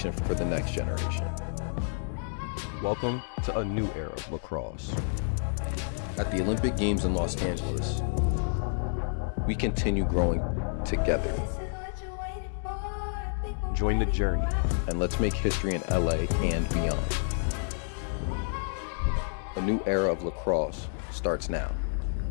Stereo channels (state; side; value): silent; right; digital silence